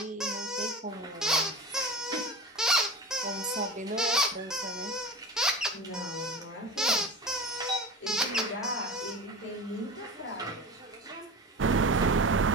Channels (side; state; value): both; normal; correlation 0.31